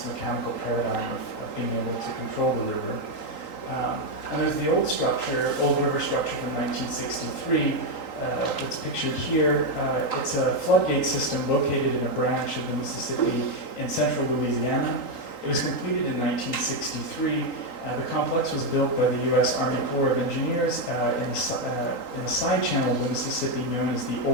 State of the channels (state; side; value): late; right; 3.8 ms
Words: mechanical paradigm of being able to control the river. And there's the old structure, old river structure from 1963, that's pictured here. It's a floodgate system located in a branch of the Mississippi in central Louisiana. It was completed in 1963. The complex was built by the U.S. Army Corps of Engineers in a side channel of the Mississippi known as the